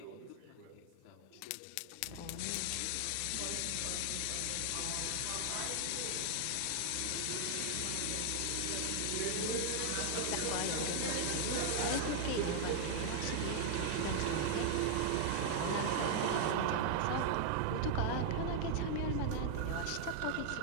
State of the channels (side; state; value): both; different; correlation 0.00